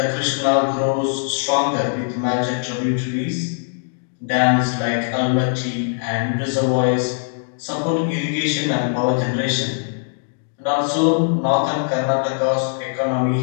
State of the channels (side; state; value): right; silent; digital silence